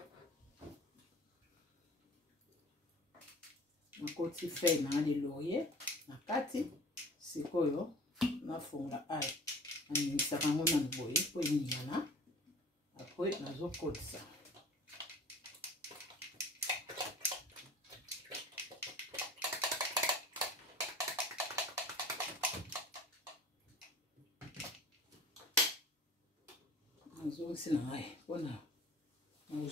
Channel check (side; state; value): both; normal; correlation 0.44